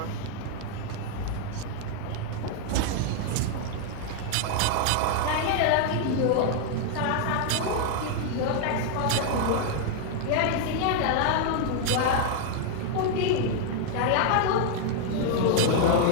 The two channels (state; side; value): different; both; correlation 0.00